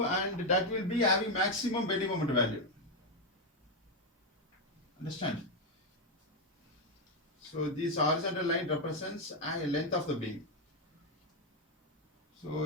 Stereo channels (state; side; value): normal; both; correlation 0.04